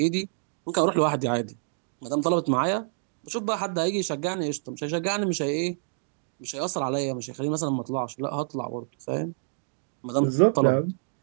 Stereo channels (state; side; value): silent; left; digital silence